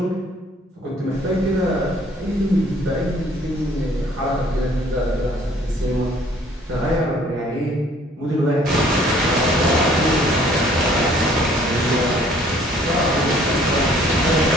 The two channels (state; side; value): normal; both; correlation 0.58